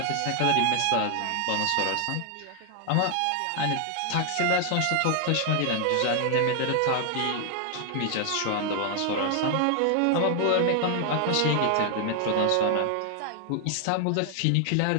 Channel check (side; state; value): both; different; correlation 0.00